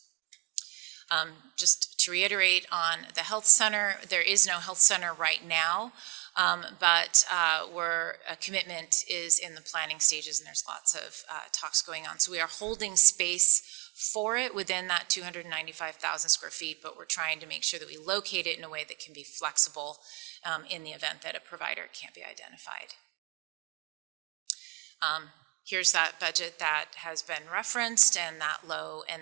Just to reiterate on the health center, there is no health center right now, but a commitment is in the planning stages, and there's lots of talks going on. So we are holding space for it within that 295,000 square feet, but we're trying to make sure that we locate it in a way that can be flexible in the event that a provider can't be identified. Here's that budget that has been referenced, and that low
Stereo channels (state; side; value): quieter; left; 27.2 dB